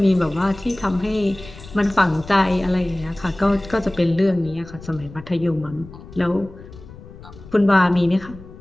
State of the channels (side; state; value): left; noise; rumble, 18 dB below the sound